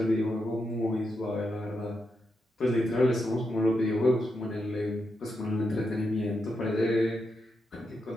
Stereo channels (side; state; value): both; normal; correlation 0.84